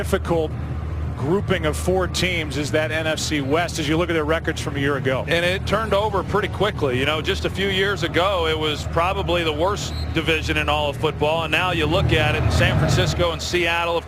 grouping of 4 teams is that NFC West as you look at their records from a year ago. And it turned over pretty quickly. You know, just a few years ago, it was probably the worst division in all of football. And now you look at it in San Francisco and Seattle,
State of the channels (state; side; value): identical; both; correlation 1.00